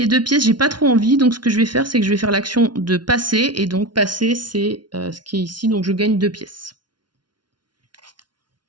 2 pièces, j'ai pas trop envie. Donc ce que je vais faire, c'est que je vais faire l'action de passer. Et donc passer, c'est ce qui est ici. Donc je gagne 2 pièces.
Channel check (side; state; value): left; late; 0.70 ms